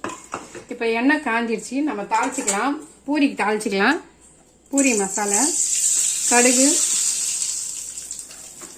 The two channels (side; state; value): both; identical; correlation 1.00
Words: இப்போ எண்ணெய் காஞ்சிருச்சு, நம்ம தாளிச்சிக்கலாம். பூரிக்கு தாளிச்சிக்கலாம். பூரி மசாலா, கடுகு,